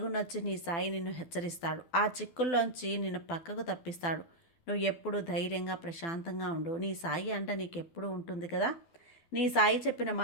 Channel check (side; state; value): right; late; 12 ms